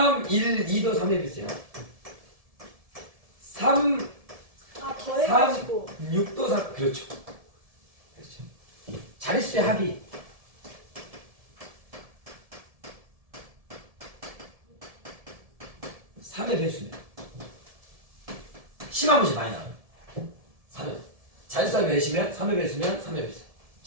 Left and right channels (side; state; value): left; late; 1.7 ms